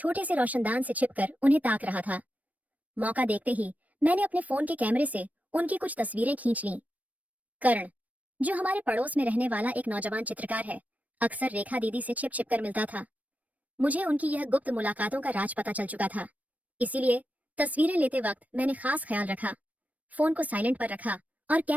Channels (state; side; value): late; left; 0.072 ms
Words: से रोशनदान से छिपकर उन्हें ताक रहा था। मौका देखते ही मैंने अपने फोन के कैमरे से उनकी कुछ तस्वीरें खींच लीं। कर्ण, जो हमारे पड़ोस में रहने वाला एक नौजवान चित्रकार है, अक्सर रेखा दीदी से छिप छिप कर मिलता था। मुझे उनकी यह गुप्त मुलाकातों का राज पता चल चुका था। इसीलिए तस्वीरें लेते वक्त मैंने खास ख्याल रखा, फोन को साइलेंट पर रखा और